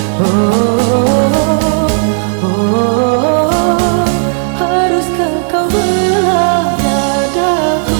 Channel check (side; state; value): left; silent; digital silence